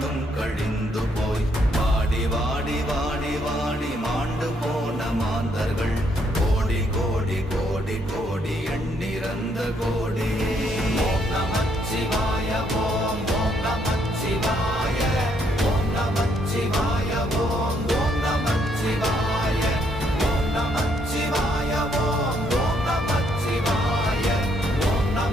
கழிந்து போய் வாடி வாடி வாடி வாடி மாண்டு போன மாந்தர்கள் கோடி கோடி கோடி கோடி எண்ணிறந்த கோடி. ஓம் நமச்சிவாய ஓம் ஓம் நமச்சிவாய ஓம் நமச்சிவாய ஓம் ஓம் நமச்சிவாய ஓம் நமச்சிவாய ஓம் ஓம் நமச்சிவாய ஓம்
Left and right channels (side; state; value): both; normal; correlation 0.72